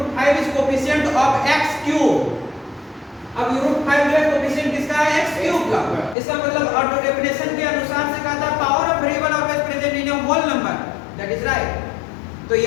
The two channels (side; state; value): right; drops out; at 6.2 s